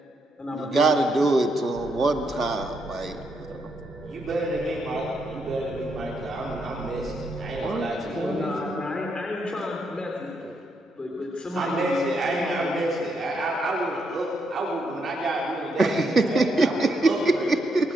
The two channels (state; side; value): normal; both; correlation 0.78